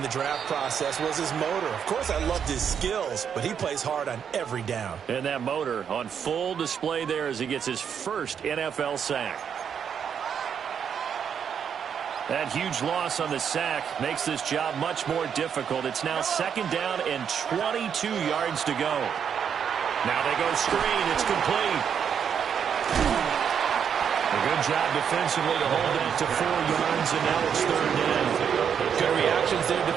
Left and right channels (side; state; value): left; quieter; 7.7 dB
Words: the draft process was his motor. Of course, I loved his skills, but he plays hard on every down. And that motor on full display there as he gets his first NFL sack. That huge loss on the sack makes this job much more difficult. It's now 2nd down and 22 yards to go. Now they go screen. It's complete. A good job defensively to hold that to 4 yards, and now it's 3rd down. Good reactions there